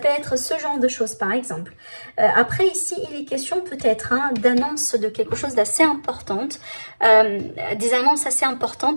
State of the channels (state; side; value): inverted; both; correlation -1.00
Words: être ce genre de choses par exemple. Après ici, il est question peut-être d'annonce de quelque chose d'assez importante. Des annonces assez